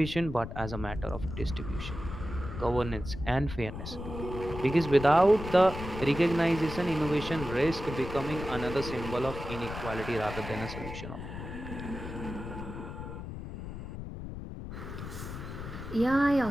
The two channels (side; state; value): left; noise; rumble, 8 dB below the sound